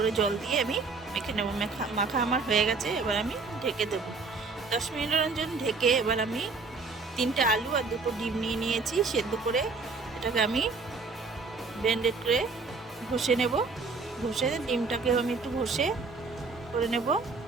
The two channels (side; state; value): left; quieter; 4.2 dB